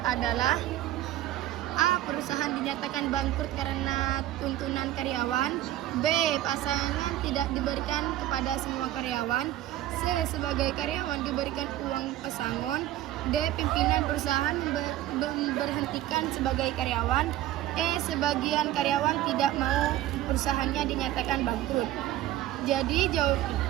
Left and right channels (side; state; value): left; quieter; 13.9 dB